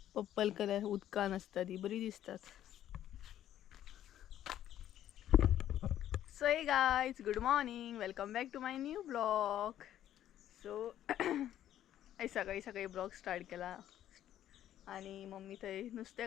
पर्पल कलर उदकान असता ती बरी दिसतात. So hey guys good morning welcome back to my new blog. So सकाळी सकाळी ब्लॉग स्टार्ट केला आणि मम्मी थंय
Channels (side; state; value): right; quieter; 11.7 dB